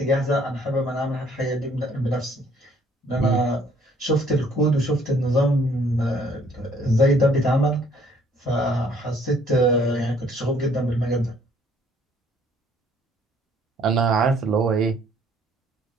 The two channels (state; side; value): normal; both; correlation 0.62